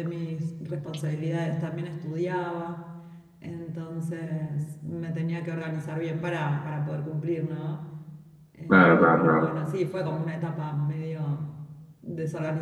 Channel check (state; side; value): identical; both; correlation 1.00